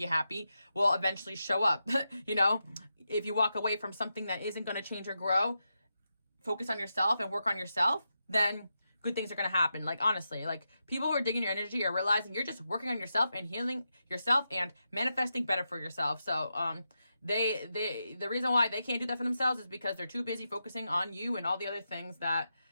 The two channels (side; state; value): both; inverted; correlation -0.87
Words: happy will eventually show up, you know. If you walk away from something that isn't going to change or grow, focus on yourself and work on yourself, then good things are going to happen. Like, honestly, like, people who are digging your energy are realizing you're just working on yourself and healing yourself and manifesting better for yourself. So the reason why they can't do that for themselves is because they're too busy focusing on you and all the other things that